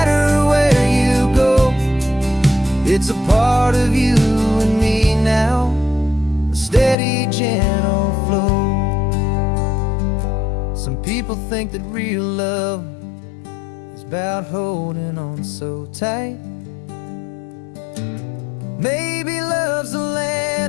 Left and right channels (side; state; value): right; drops out; at 7.0 s